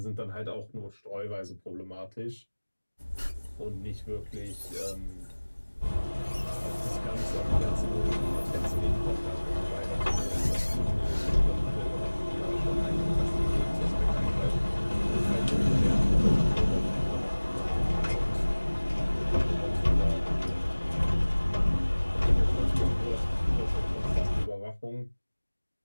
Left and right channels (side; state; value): both; inverted; correlation -1.00